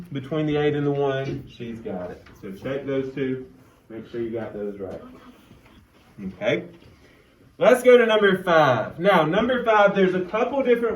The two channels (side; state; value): both; identical; correlation 1.00